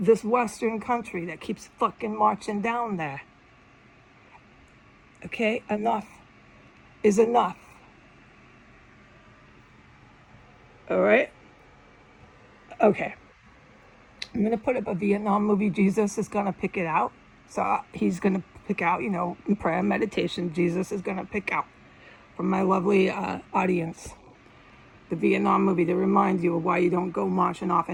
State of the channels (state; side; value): identical; both; correlation 1.00